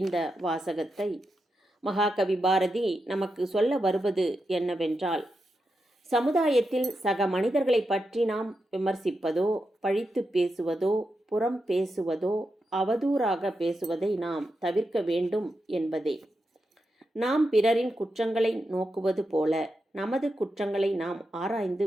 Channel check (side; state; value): both; normal; correlation 0.87